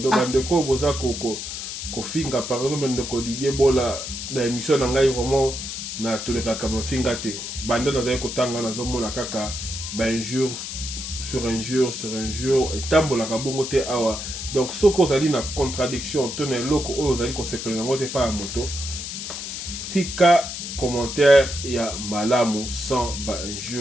bandeko bozako ko finga par exemple ndeko Didier Bola na émission na ngai vraiment na toleka kama finga te banda na zaye ko tanga na zomona kaka ba injure sur injure et tambola ka bongo te awa donc soko zali na contradiction to na loko oyo zali ko sepela ngote pa moto tika commentaire ya malamu sans ba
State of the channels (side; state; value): left; noise; hiss, 6 dB below the sound